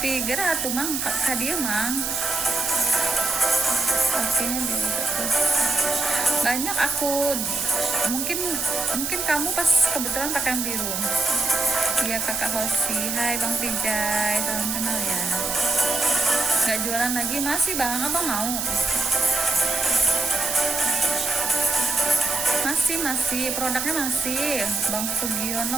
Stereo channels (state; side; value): noise; right; hiss, 2 dB below the sound